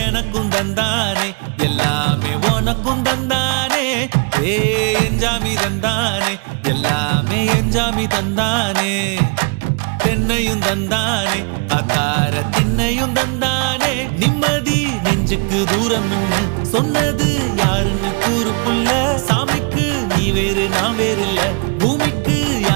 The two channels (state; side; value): quieter; left; 34.8 dB